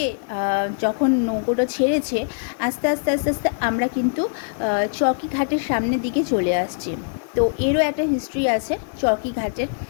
যখন নৌকোটা ছেড়েছে, আস্তে আস্তে আস্তে আস্তে আমরা কিন্তু চৌকি ঘাটের সামনের দিকে চলে আসছি। তো এরও একটা হিস্ট্রি আছে চৌকি ঘাটের।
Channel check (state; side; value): silent; right; digital silence